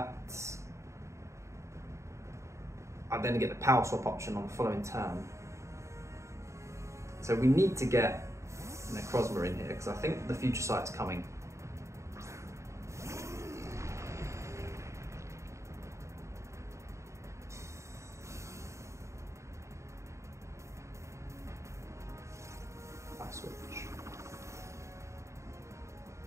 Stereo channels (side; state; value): left; late; 0.14 ms